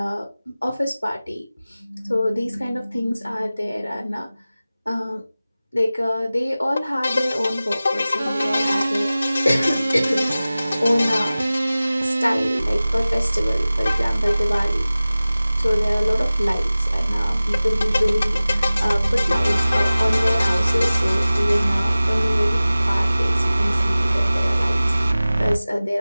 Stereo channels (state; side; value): inverted; both; correlation -0.97